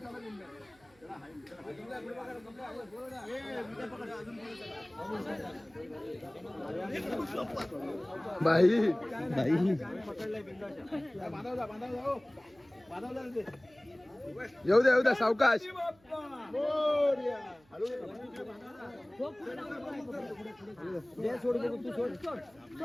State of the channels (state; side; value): noise; right; hum, 30 dB below the sound